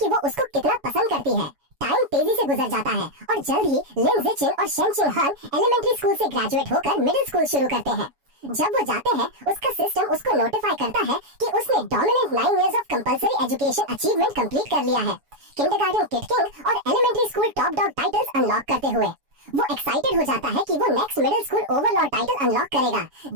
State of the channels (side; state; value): left; late; 7.1 ms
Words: वो उसको कितना पसंद करती है। टाइम तेजी से गुजर जाता है और जल्द ही लिन जिचिन और शेंगशिन हान एलिमेंट्री स्कूल से ग्रेजुएट होकर मिडिल स्कूल शुरू करते हैं। जब वो जाते हैं, उसका सिस्टम उसको नोटिफाई करता है कि उसने dominant 9 years of compulsory education achievement complete कर लिया है, किंडरगार्टन किड किंग और elementary school top dog titles unlock करते हुए। वो एक्साइटेड हो जाता है कि वो next middle school overlord title unlock करेगा,